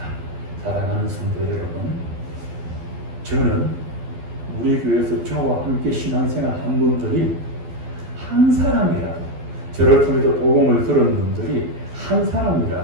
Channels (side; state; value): left; late; 12 ms